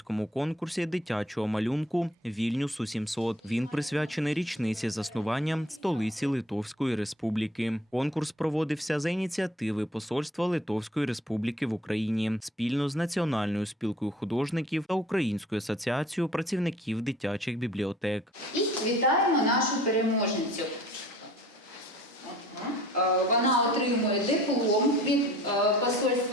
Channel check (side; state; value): both; normal; correlation 0.51